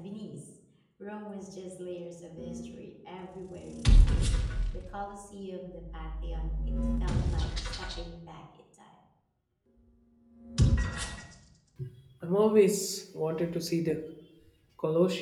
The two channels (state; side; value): identical; both; correlation 1.00